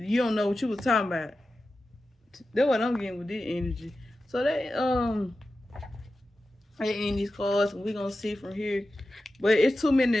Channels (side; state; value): both; normal; correlation 0.93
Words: don't know what you was talking about. That's what I'm getting with this energy. So they end these cards, and we gonna see from here. But it's too